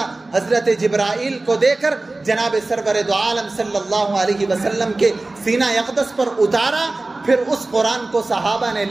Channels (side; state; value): left; quieter; 3.0 dB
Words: حضرت جبرائیل کو دے کر جناب سرور دو عالم صلی اللہ علیہ وسلم کے سینہ اقدس پر اتارا. پھر اس قرآن کو صحابہ نے